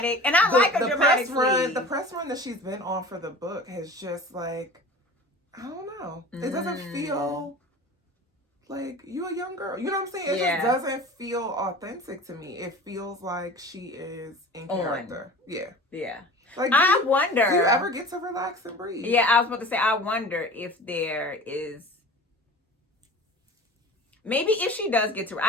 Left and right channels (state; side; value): normal; both; correlation 0.39